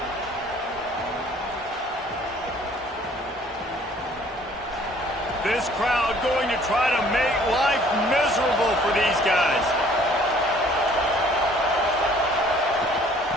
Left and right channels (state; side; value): normal; both; correlation 0.56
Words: This crowd going to try to make life miserable for these guys.